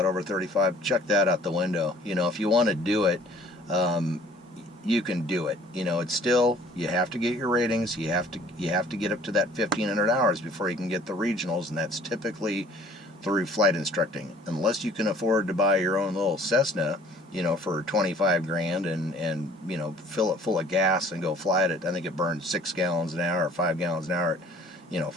over 35, check that out the window. If you want to do it, you can do it. It's still, you have to get your ratings. You have to get up to that 1,500 hours before you can get the regionals, and that's typically through flight instructing. Unless you can afford to buy your own little Cessna, for 25 grand and fill it full of gas and go fly it. I think it burns 6 gallons an hour or 5 gallons an hour.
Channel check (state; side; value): normal; both; correlation 0.54